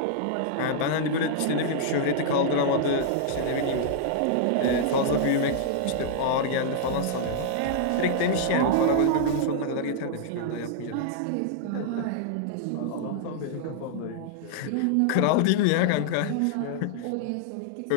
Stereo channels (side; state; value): both; different; correlation -0.01